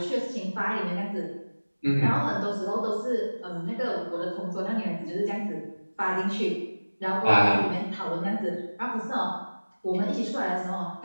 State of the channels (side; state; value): both; inverted; correlation -1.00